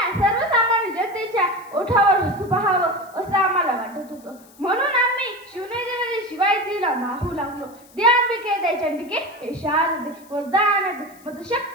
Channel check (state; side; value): noise; left; hiss, 26 dB below the sound